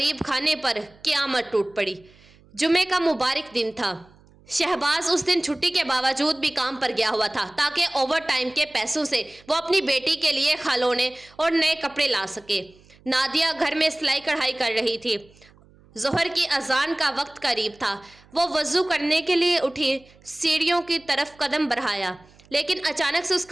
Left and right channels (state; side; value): noise; right; hum, 28 dB below the sound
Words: खाने पर क़यामत टूट पड़ी। जुमे का मुबारक दिन था। शहबाज उस दिन छुट्टी के बावजूद भी काम पर गया हुआ था ताकि ओवर टाइम के पैसों से वो अपनी बेटी के लिए खिलौने और नए कपड़े ला सके। नादिया घर में सिलाई कढ़ाई कर रही थी। ज़ोहर की अजान का वक्त करीब था। वो वज़ू करने के लिए उठी, सीढ़ियों की तरफ कदम बढ़ाया, लेकिन अचानक से